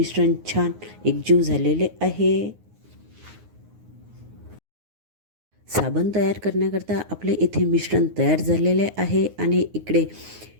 छान एकजीव झालेले आहे. साबण तयार करण्याकरता आपले इथे मिश्रण तयार झालेले आहे आणि इकडे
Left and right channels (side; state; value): left; late; 9.5 ms